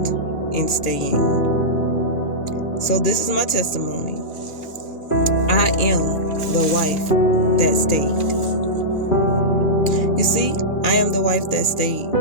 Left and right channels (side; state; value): right; late; 2.4 ms